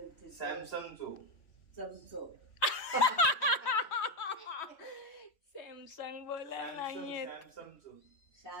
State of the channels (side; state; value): right; late; 3.1 ms